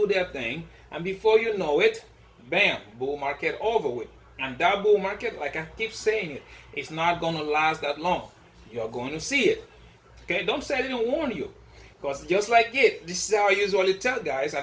their thing. And before you know it, bam, bull market over with. And that bull market, like I keep saying it's not going to last that long. You're going to see it. Okay, don't say I didn't warn you. Because just like it, this is how I usually tell guys,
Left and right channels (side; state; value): both; identical; correlation 1.00